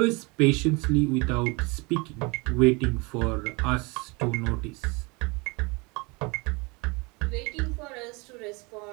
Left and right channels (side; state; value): left; quieter; 27.8 dB